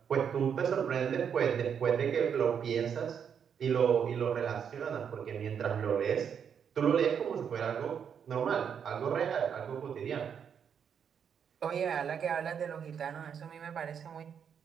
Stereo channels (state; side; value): quieter; left; 7.6 dB